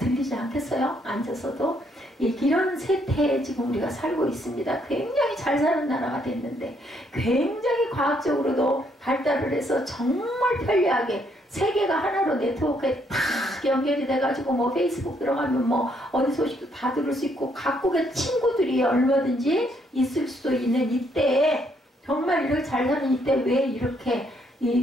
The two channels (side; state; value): both; normal; correlation 0.71